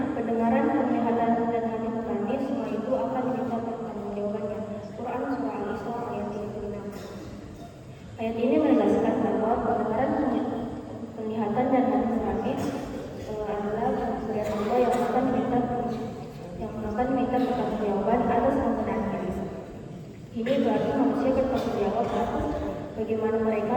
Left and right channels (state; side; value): identical; both; correlation 1.00